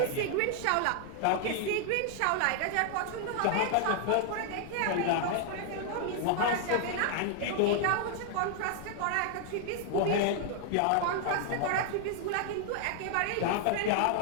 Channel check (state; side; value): different; both; correlation 0.00